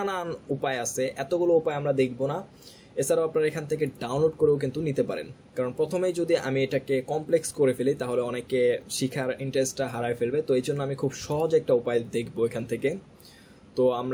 উপায় আছে, এতগুলো উপায় আমরা দেখব না। এছাড়াও আপনারা এখান থেকে ডাউনলোড করেও কিন্তু নিতে পারেন, কারণ প্রথমেই যদি আমি এটাকে কমপ্লেক্স করে ফেলি তাহলে অনেকে শিখার ইন্টারেস্টটা হারায় ফেলবে। তো এই জন্য আমি খুব সহজ একটা উপায় দেখবো এখান থেকে। তো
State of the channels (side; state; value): both; identical; correlation 1.00